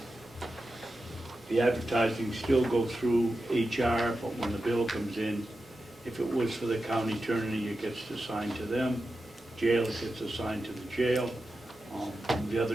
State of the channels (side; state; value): both; normal; correlation 0.91